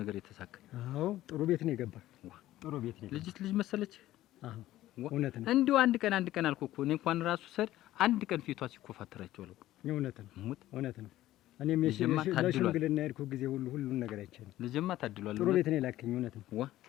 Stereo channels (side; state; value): right; quieter; 14.8 dB